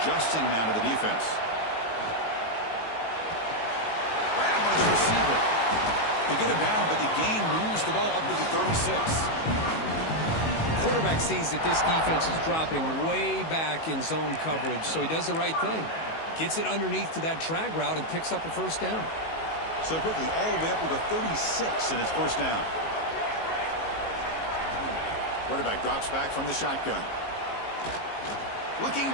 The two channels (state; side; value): late; right; 19 ms